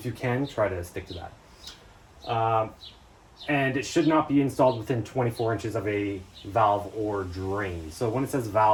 you can, try to stick to that. And it should not be installed within 24 inches of a valve or drain. So when it says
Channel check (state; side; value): identical; both; correlation 1.00